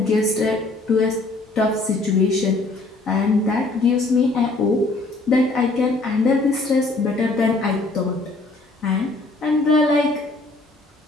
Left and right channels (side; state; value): right; quieter; 3.2 dB